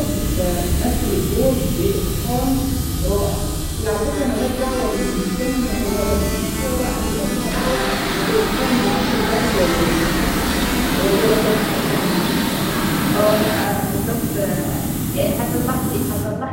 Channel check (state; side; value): identical; both; correlation 1.00